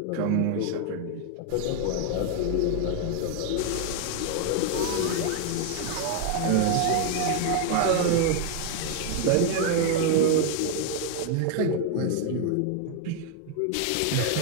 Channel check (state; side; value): different; both; correlation 0.00